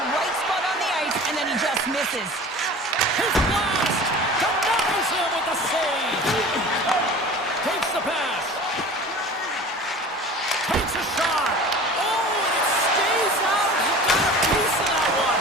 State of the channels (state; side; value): normal; both; correlation 0.40